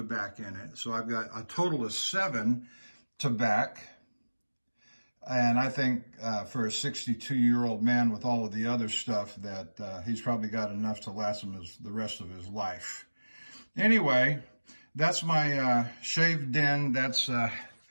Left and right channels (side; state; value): both; inverted; correlation -1.00